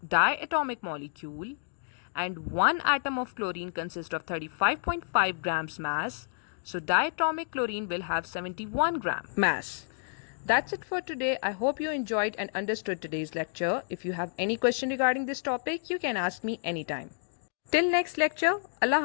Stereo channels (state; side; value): silent; right; digital silence